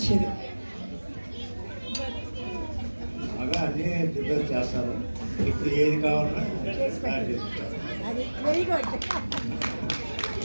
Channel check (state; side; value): inverted; both; correlation -1.00